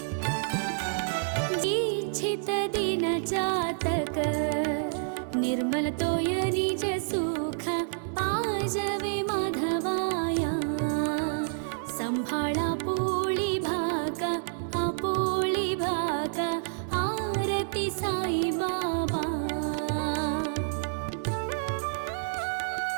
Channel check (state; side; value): silent; left; 57 dB below the other